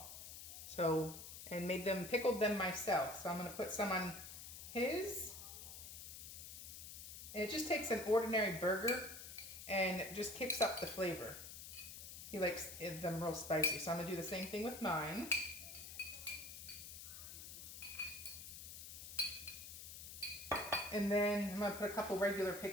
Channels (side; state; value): left; noise; hiss, 11 dB below the sound